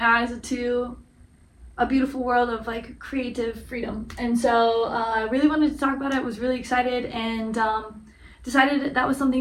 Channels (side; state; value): both; identical; correlation 1.00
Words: eyes to a beautiful world of like creative freedom. And so I really wanted to talk about it, was really excited, and decided that was